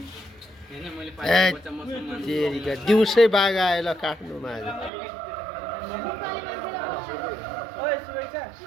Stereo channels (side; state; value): left; drops out; at 4.9 s